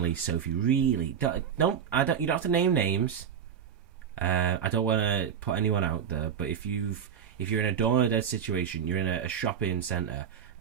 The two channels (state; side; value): quieter; left; 8.1 dB